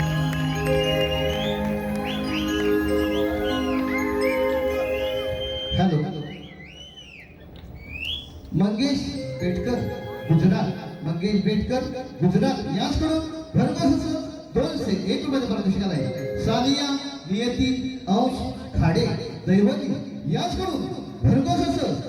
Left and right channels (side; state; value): both; identical; correlation 1.00